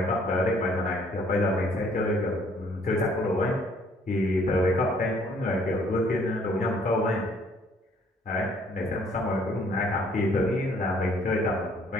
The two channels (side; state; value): both; normal; correlation 0.62